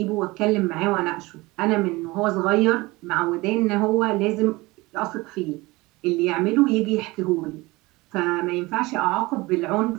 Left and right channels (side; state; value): left; quieter; 21.8 dB